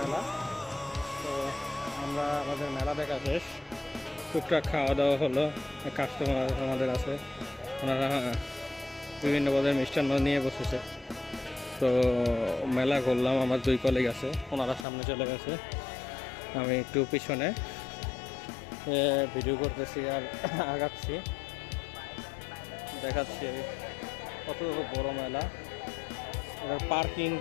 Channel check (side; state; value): right; drops out; at 14.9 s